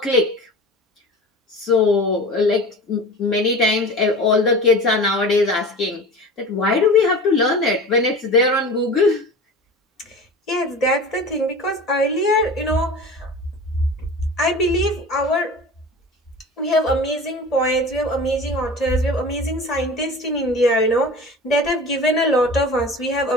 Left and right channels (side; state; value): both; normal; correlation 0.36